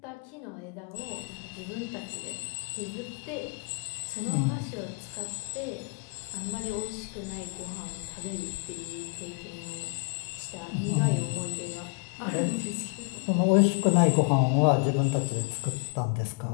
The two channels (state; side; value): quieter; right; 32.2 dB